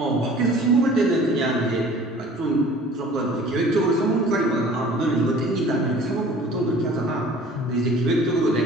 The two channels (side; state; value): both; normal; correlation 0.48